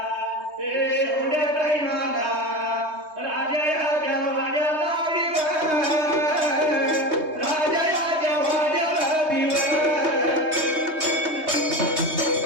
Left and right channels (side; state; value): left; late; 3.2 ms